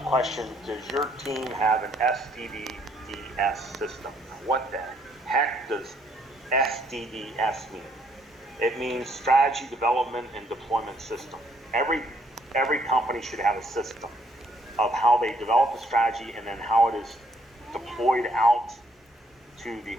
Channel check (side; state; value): both; normal; correlation 0.68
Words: question, does your team have an SDDS system? What the heck does SDDS mean? It means strategy development and deployment system. Every company should have a system of how they develop a strategy and then how it is deployed out to the